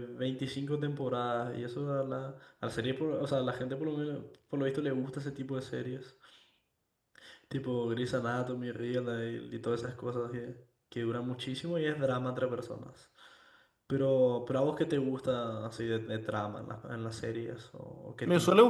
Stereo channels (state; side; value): identical; both; correlation 1.00